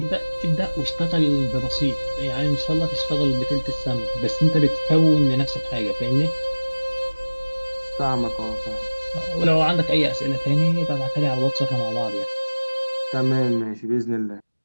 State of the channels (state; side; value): inverted; both; correlation -1.00